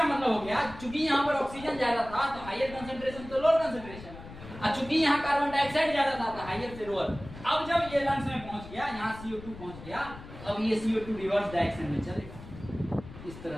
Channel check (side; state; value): left; noise; rumble, 15 dB below the sound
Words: मतलब हो गया, चूंकि यहाँ पर ऑक्सीजन ज्यादा था तो हायर कंसंट्रेशन तो लोअर कंसंट्रेशन, और चूंकि यहाँ कार्बन डाइऑक्साइड ज्यादा था तो हायर से लोअर। अब जब ये लंग्स में पहुंच गया, यहाँ CO2 पहुंच गया, अब ये CO2 रिवर्स डायरेक्शन में चलेगा इस